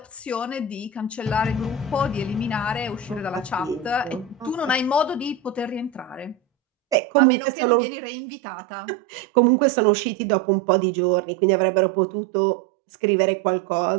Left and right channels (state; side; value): drops out; left; at 7.0 s